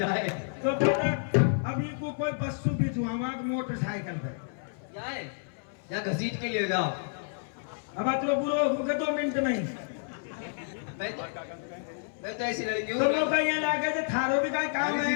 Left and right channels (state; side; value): silent; right; 58 dB below the other